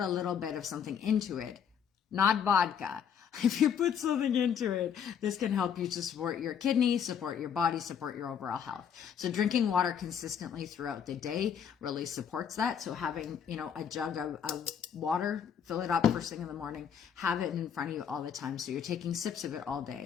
little bit of something into it, not vodka, if you put something into it, this can help you to support your kidneys, support your body, support your overall health. So drinking water consistently throughout the day really supports that. So having, a jug of water, fill it up first thing in the morning, have it in front of you all the time. So you're taking sips of it all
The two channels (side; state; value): right; quieter; 8.0 dB